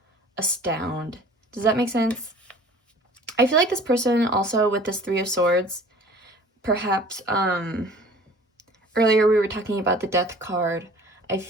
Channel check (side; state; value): both; normal; correlation 0.47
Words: astound. Does that make sense? I feel like this person also with this 3 of Swords, perhaps earlier we were talking about the Death card. I